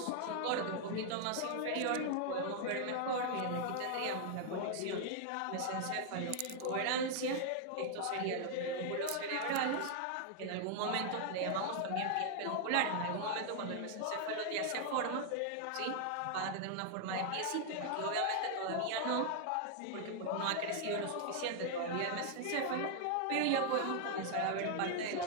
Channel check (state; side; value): different; both; correlation 0.00